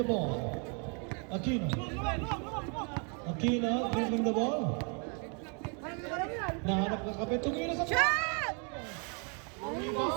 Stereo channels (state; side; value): quieter; left; 37.1 dB